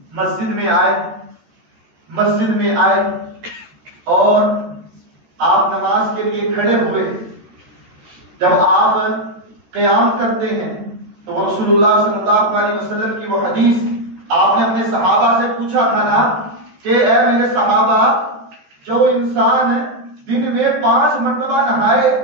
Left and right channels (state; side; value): late; left; 13 ms